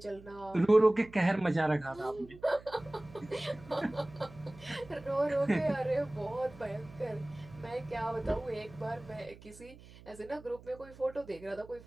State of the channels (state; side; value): noise; right; hum, 20 dB below the sound